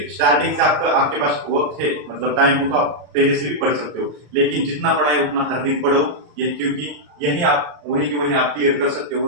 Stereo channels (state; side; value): late; left; 34 ms